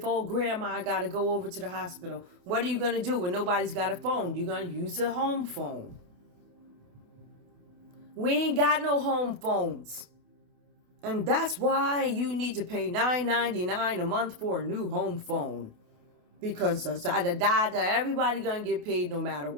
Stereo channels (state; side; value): late; left; 28 ms